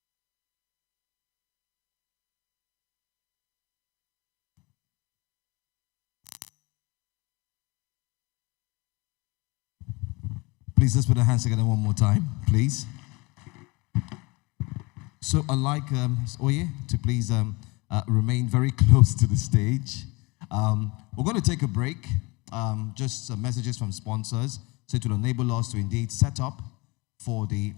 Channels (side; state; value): right; quieter; 25.5 dB